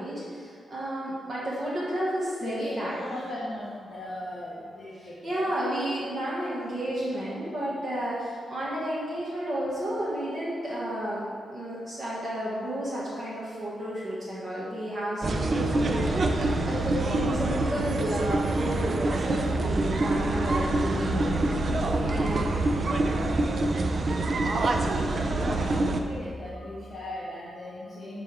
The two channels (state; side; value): normal; both; correlation 0.85